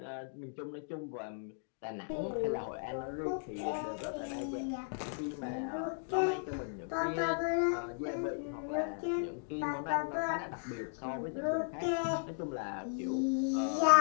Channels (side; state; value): right; silent; digital silence